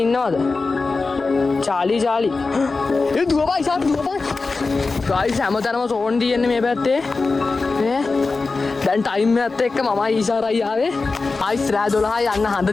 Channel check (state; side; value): quieter; right; 3.9 dB